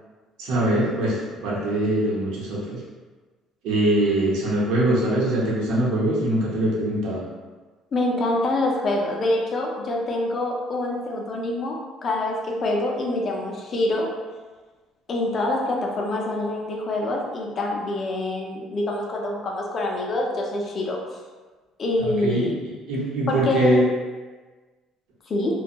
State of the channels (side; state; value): both; normal; correlation 0.59